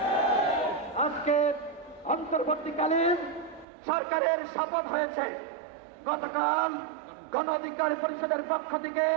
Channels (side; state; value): left; drops out; at 3.7 s